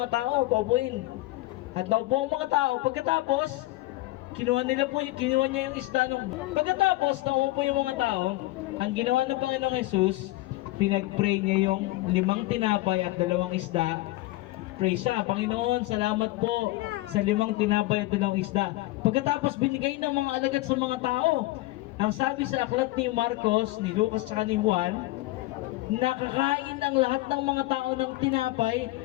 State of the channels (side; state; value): right; quieter; 19.0 dB